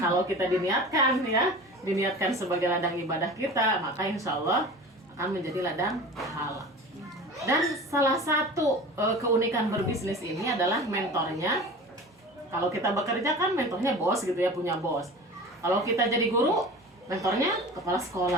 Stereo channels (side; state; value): both; normal; correlation 0.37